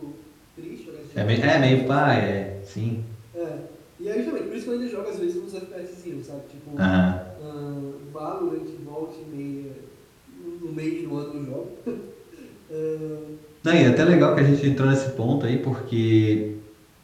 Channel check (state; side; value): identical; both; correlation 1.00